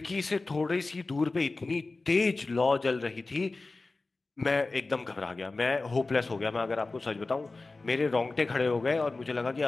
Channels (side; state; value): right; quieter; 3.4 dB